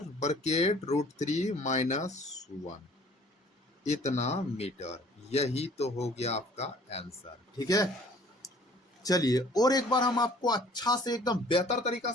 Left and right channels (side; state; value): both; normal; correlation 0.54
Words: ब्रैकेट √3 माइनस 1, इतना मीटर। यही तो हो गया आपका आंसर, ठीक है। चलिए और एक बार हम आपको अच्छा से एकदम बेहतर तरीका